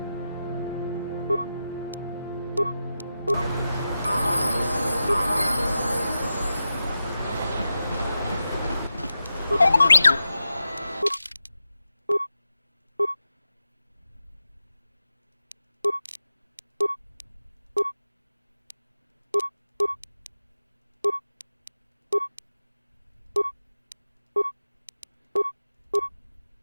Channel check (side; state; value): both; inverted; correlation -0.91